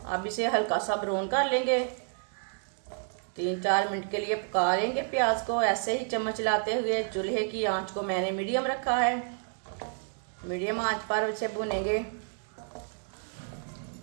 अब इसे हल्का सा ब्राउन कर लेंगे। 3-4 मिनट के लिए पका लेंगे प्याज को, ऐसे ही चम्मच लाते हुए। चूल्हे की आंच को मैंने मीडियम रखा है। मीडियम आंच पर इसे भुनेंगे।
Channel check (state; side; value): silent; left; 58 dB below the other